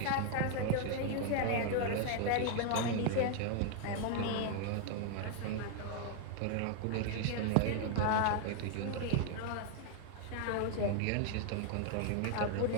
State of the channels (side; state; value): both; different; correlation 0.00